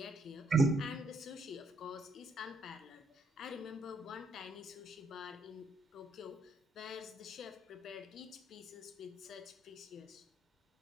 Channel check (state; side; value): normal; both; correlation 0.71